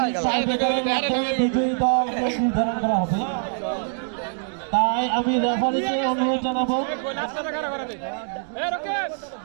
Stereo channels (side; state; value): left; silent; digital silence